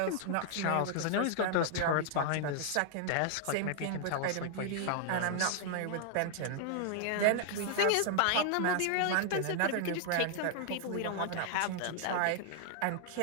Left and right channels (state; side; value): different; both; correlation -0.01